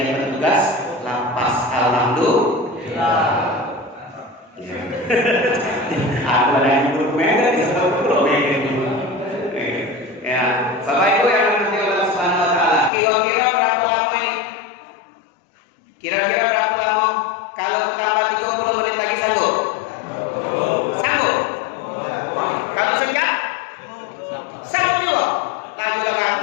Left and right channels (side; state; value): right; drops out; at 12.9 s